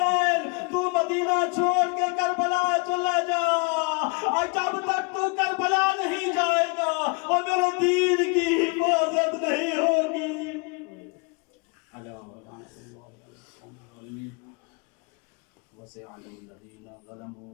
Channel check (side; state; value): right; quieter; 32.9 dB